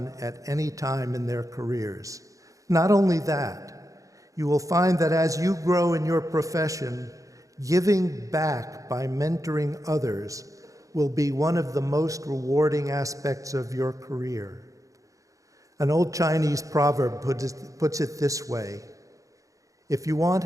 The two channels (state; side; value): late; left; 0.16 ms